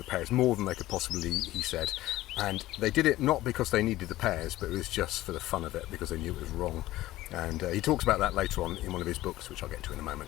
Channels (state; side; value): quieter; right; 16.2 dB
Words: pears, more than they could possibly eat, he said. And they did it not because they needed the pears, but it was just for the fun of it, because they knew it was wrong. And he talks about that later on in one of his books, which I'll get to in a